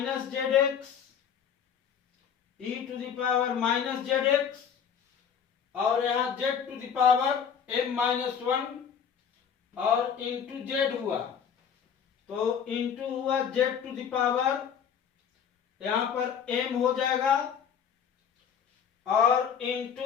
zx, e to the power minus zx, और यहाँ z to the power m minus 1, और इंटू z हुआ, तो इंटू हुआ z टू द पावर, यहाँ पर m हो जाएगा, और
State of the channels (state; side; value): quieter; right; 7.6 dB